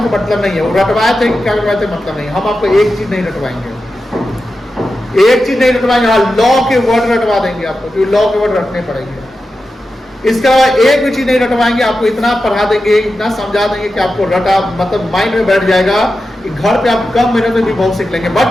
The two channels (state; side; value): normal; both; correlation 0.91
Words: मतलब नहीं है। वो रटवाए थे कि क्या रटवाए थे मतलब नहीं। हम आपको एक चीज नहीं रटवाएंगे, एक चीज नहीं रटवाएंगे। हाँ, लॉ के वर्ड रटवा देंगे आपको, क्योंकि लॉ के वर्ड रटने पड़ेंगे। इसके अलावा एक भी चीज नहीं रटवाएंगे। आपको इतना पढ़ा देंगे, इतना समझा देंगे कि आपको रटा मतलब माइंड में बैठ जाएगा कि घर पे आप कम मिनट में भी बहुत सीख लेंगे।